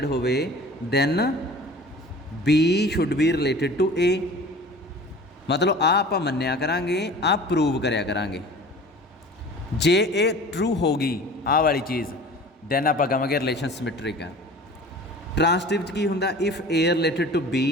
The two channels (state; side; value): normal; both; correlation 0.42